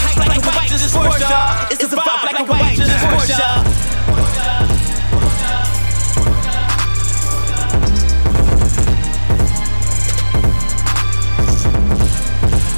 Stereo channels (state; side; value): inverted; both; correlation -1.00